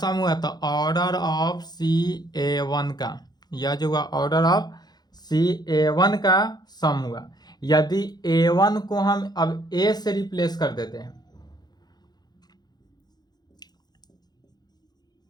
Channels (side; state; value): right; late; 0.20 ms